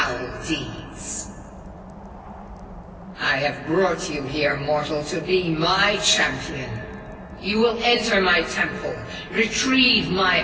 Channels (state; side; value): identical; both; correlation 1.00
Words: deeds. I have brought you here, mortal, to be my champion. You will enter my temple, retrieve my